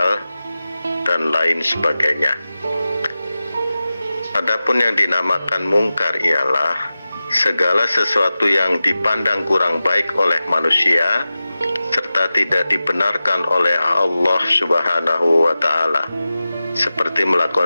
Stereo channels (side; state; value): both; inverted; correlation -0.95